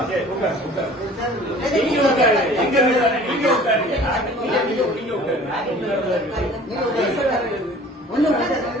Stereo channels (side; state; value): both; normal; correlation 0.48